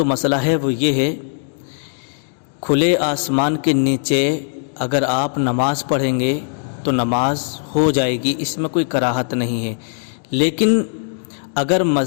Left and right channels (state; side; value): silent; right; digital silence